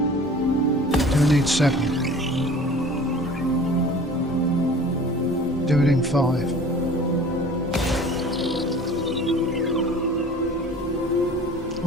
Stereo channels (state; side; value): normal; both; correlation 0.45